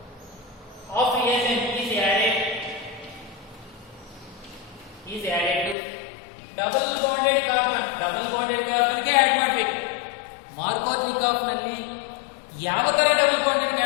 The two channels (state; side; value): drops out; right; at 5.8 s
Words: is added to double bonded carbon ಗೆ add ಮಾಡಬೇಕು. ಮಾರ್ಕೋನಿಕಾಫ್ ನಲ್ಲಿ ಯಾವ ತರ ಡಬಲ್ ಬಾಂಡೆಡ್ ಗೆ